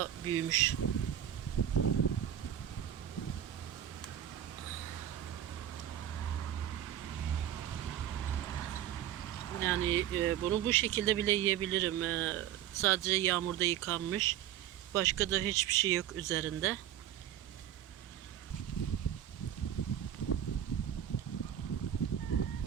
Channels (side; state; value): left; quieter; 10.9 dB